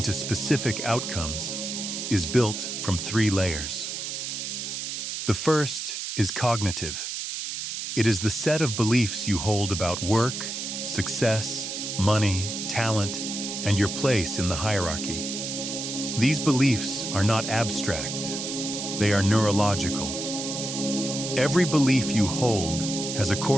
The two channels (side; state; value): right; noise; hiss, 5 dB below the sound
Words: specific outcomes, is built from 3 layers. The first is cognitive. It is the set of beliefs you hold about work, success, money, talent, and your place in the hierarchy. These beliefs are not abstract. They are neurological. Every belief you hold has a